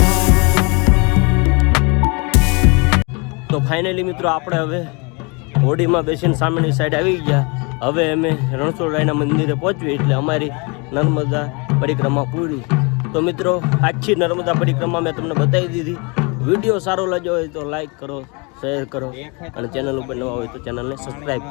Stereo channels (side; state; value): right; quieter; 30.8 dB